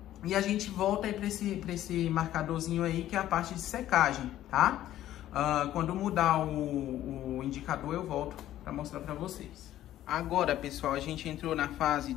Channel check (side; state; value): right; quieter; 13.0 dB